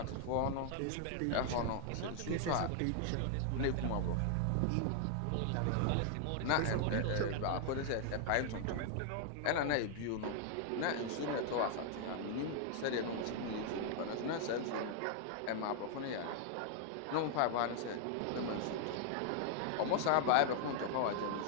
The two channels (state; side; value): different; both; correlation 0.00